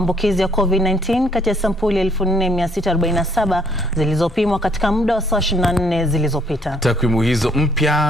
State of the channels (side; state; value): right; noise; rumble, 25 dB below the sound